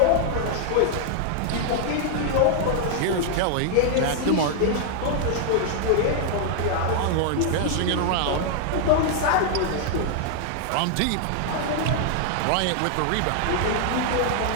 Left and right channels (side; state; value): both; different; correlation 0.00